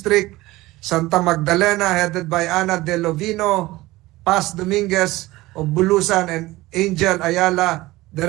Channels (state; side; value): quieter; left; 18.9 dB